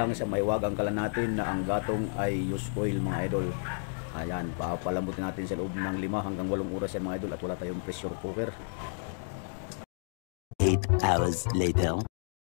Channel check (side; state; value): right; silent; digital silence